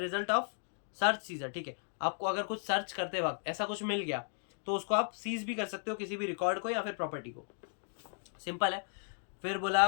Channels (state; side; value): silent; right; 54 dB below the other